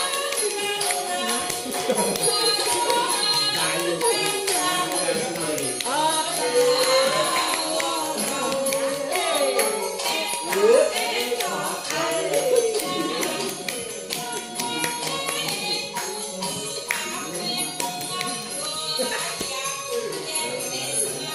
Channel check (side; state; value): both; identical; correlation 1.00